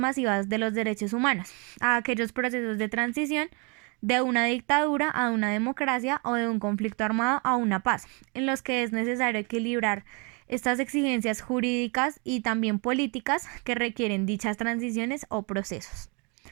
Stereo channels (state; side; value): quieter; left; 33.3 dB